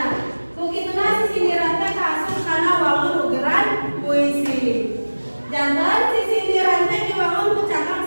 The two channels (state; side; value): inverted; both; correlation -1.00